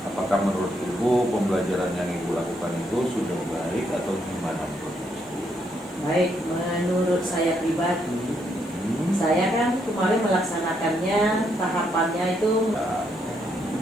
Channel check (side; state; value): both; normal; correlation 0.75